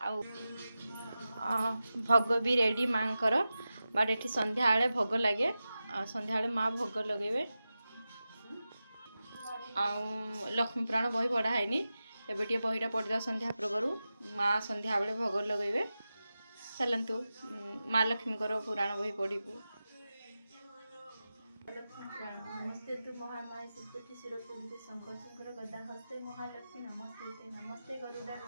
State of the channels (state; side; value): inverted; both; correlation -0.93